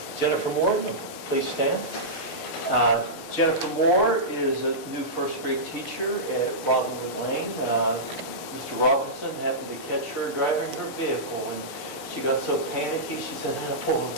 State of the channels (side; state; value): right; late; 6.6 ms